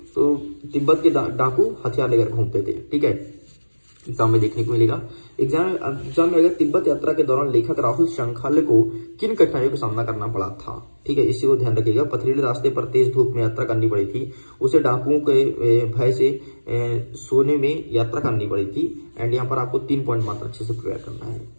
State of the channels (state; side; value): inverted; both; correlation -1.00